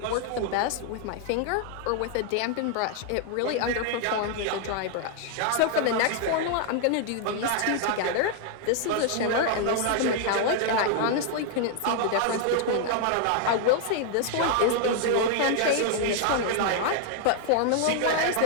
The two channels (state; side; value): different; both; correlation 0.00